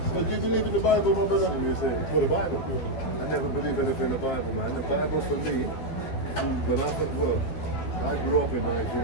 But do you believe in the Bible, my brother? Well, the Bible. I never believe anything in the Bible, man. The Bible for me, I grew up in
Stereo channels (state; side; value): late; right; 12 ms